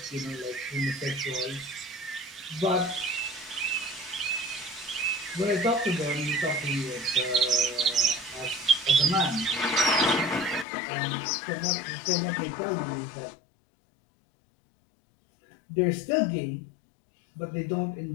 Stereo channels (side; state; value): right; drops out; at 10.7 s